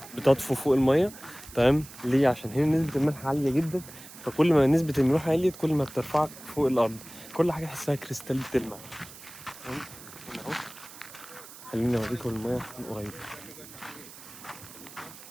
بتطفو فوق الميه. تمام ليه؟ عشان هنا نسبة الملح عالية جدا، فكل ما نسبة الملوحة عليت كل ما بترفعك فوق الأرض، كل حاجة تحسها كريستال بتلمع. تمام هنا اهو، خليني اوريكم الميه من قريب.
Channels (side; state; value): right; noise; hiss, 17 dB below the sound